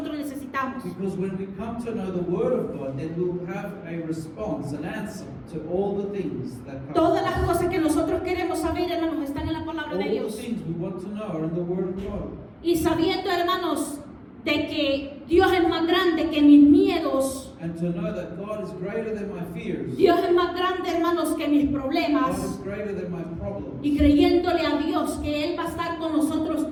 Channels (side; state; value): both; identical; correlation 1.00